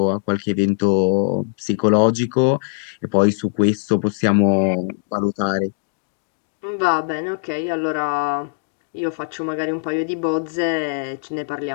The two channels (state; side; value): silent; right; digital silence